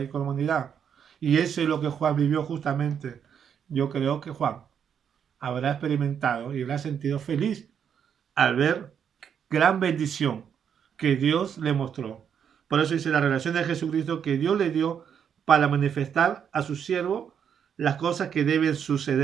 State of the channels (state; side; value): quieter; left; 8.0 dB